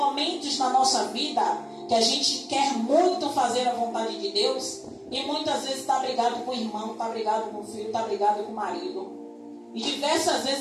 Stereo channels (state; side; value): identical; both; correlation 1.00